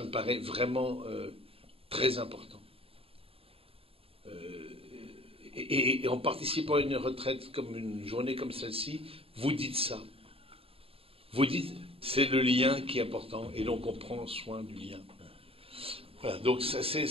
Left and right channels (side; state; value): left; late; 0.27 ms